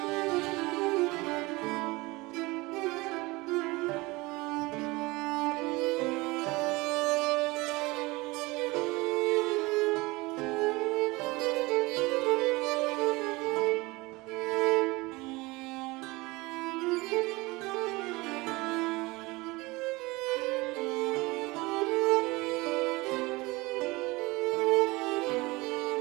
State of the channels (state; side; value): quieter; left; 22.6 dB